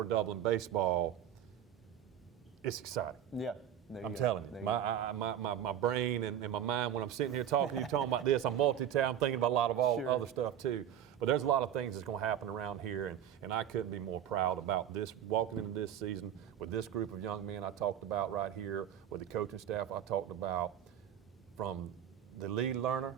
Dublin baseball. It's exciting. Yeah. There you I'm go. telling There you, go. my brain and my mind, when I'm sitting here talking about this, I'm multitasking, I'm thinking about a lot of all Sure. other stuff too. But there's a lot of things that's going to happen around here, and I couldn't be more proud about this, walking into this season with this group of young men I talked about right here, with the coaching staff I talked about, from the lead learner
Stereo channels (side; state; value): left; quieter; 10.1 dB